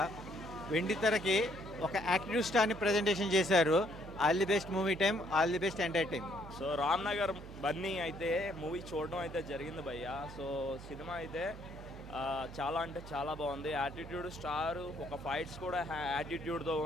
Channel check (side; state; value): right; noise; hum, 14 dB below the sound